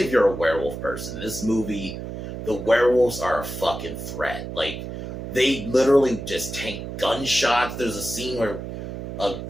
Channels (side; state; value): right; noise; hum, 7 dB below the sound